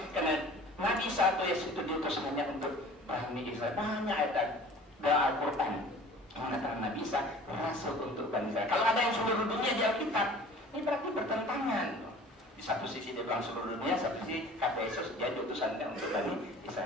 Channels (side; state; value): both; normal; correlation 0.46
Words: karena Nabi satu Yesus itu diutus hanya untuk Bani Israel. Banyak ayat dalam Al-Quran mengatakan Nabi Isa rasul untuk Bani Israel. Kalau ada yang seluruh dunia di Alkitab, ini berarti bertentangan. Di satu sisi dia bilang seluruh dunia, satu sisi kata Yesus dia diutusan untuk Bani